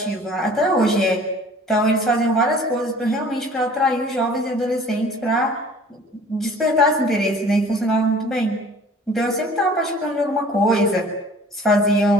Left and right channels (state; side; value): normal; both; correlation 0.49